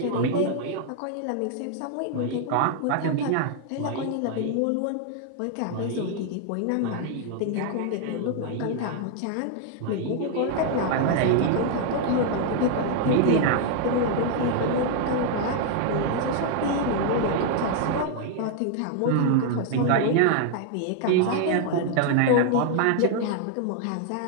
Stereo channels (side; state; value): both; different; correlation 0.00